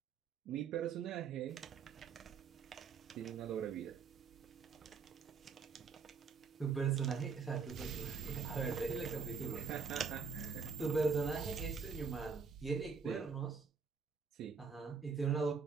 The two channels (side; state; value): left; quieter; 5.5 dB